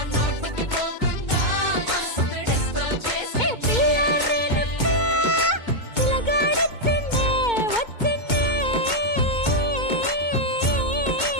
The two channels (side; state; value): right; late; 2.2 ms